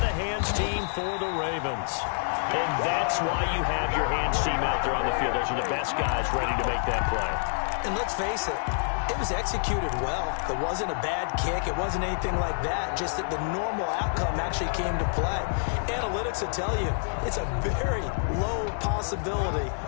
hands team for the Ravens. And that's why you have your hands team out there on the field. Those are the best guys ready to make that play. And let's face it, it was executed well. It wasn't a bad kick. It wasn't anything like that. Just that the normal outcome actually came to play. Analytics will tell you it's a very low possibility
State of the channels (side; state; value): right; silent; 60 dB below the other